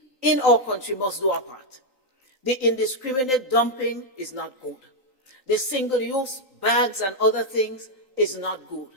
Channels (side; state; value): left; late; 3.9 ms